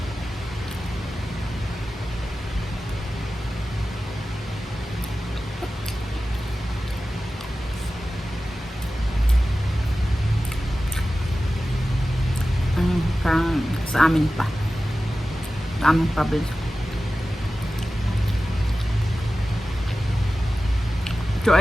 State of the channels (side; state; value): both; normal; correlation 0.95